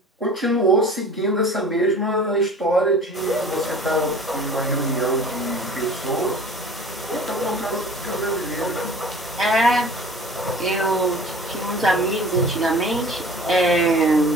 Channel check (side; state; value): both; normal; correlation 0.44